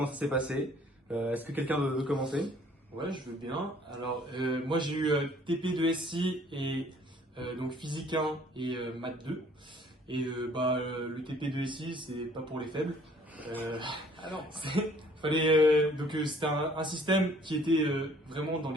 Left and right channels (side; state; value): both; normal; correlation 0.58